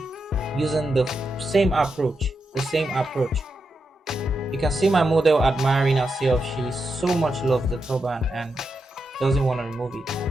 using the same approach. You can see my model admiring herself. She so much loves the turban and doesn't want to remove it.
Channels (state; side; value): normal; both; correlation 0.86